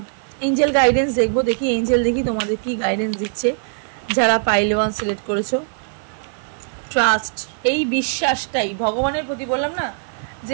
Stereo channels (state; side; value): silent; left; 65 dB below the other